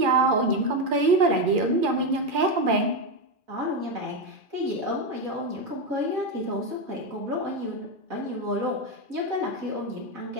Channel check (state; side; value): late; left; 2.4 ms